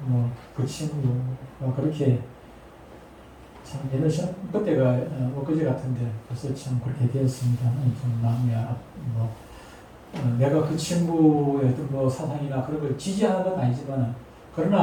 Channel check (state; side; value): identical; both; correlation 1.00